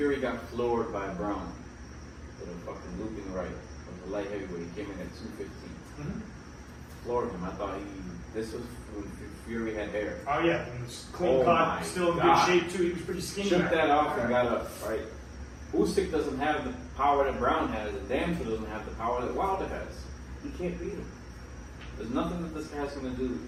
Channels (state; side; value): identical; both; correlation 1.00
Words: got floored by Brown with a fucking looping right with the light heavyweight. He came in at 215. Mm-hmm. Floored him. I thought this was when Fury had hair. Oh yeah, he was clean Oh my cut, still in God. good shape too. He was pretty skinny. Shook back that then. off and got up, right? Usyk doesn't have the power that Brown has, and damn sure doesn't have the power that Wilder has. He can't beat him. There's nothing that this guy's going to do